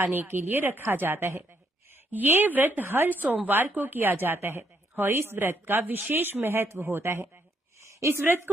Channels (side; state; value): both; normal; correlation 0.73